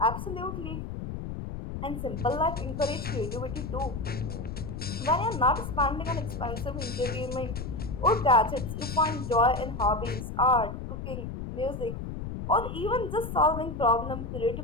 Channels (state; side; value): noise; left; rumble, 7 dB below the sound